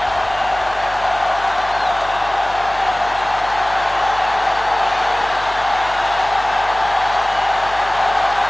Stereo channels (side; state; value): left; noise; hum, 17 dB below the sound